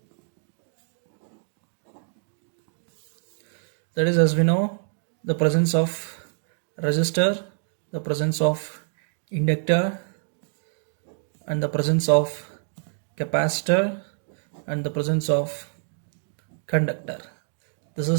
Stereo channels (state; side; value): silent; left; digital silence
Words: That is, as we know, the presence of resistor, the presence of inductor, and the presence of capacitor, and the presence of conductor. This